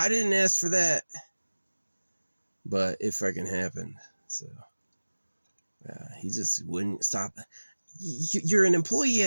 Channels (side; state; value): both; inverted; correlation -1.00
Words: didn't ask for that. But it fucking happened. So he just wouldn't stop. You're an employee